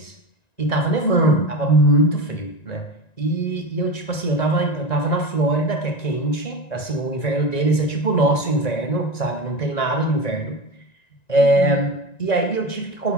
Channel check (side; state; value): right; late; 1.9 ms